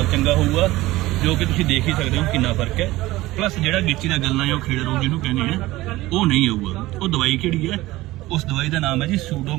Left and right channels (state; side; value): quieter; left; 18.1 dB